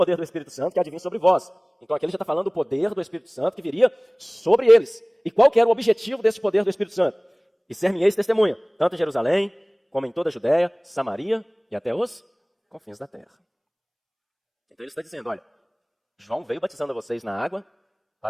do Espírito Santo que há de vir sobre vós. Então aqui ele já está falando do poder do Espírito Santo que viria sobre eles. E qual que era o objetivo desse poder do Espírito Santo? E ser-me-eis testemunha, tanto em Jerusalém, como em toda a Judéia, Samaria e até os confins da terra. Então ele está dizendo, olha, João veio batizando vocês na água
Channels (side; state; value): both; identical; correlation 1.00